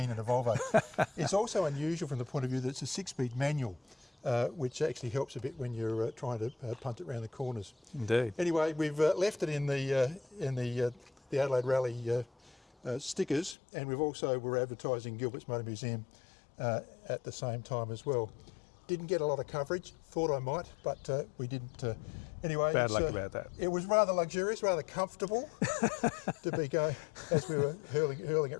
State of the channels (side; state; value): right; drops out; at 13.6 s